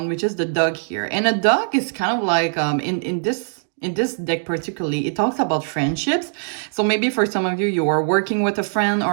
which is the dog here. And a dog is kind of like, in this deck particularly, it talks about friendships. So maybe for some of you, you are working with a friend,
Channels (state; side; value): silent; left; digital silence